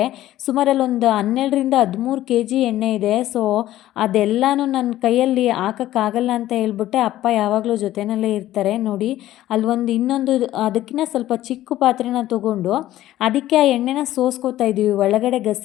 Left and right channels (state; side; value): quieter; right; 14.2 dB